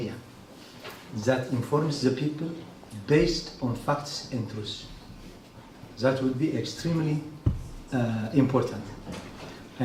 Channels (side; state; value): both; identical; correlation 1.00